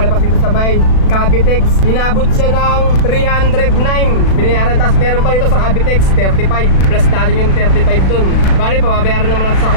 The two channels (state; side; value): late; right; 36 ms